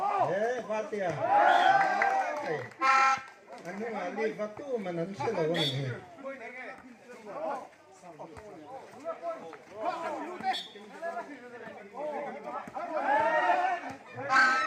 đấy phát tiền anh ấy mà đi phát tu mà nó sẽ là cái gì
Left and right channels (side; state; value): both; identical; correlation 1.00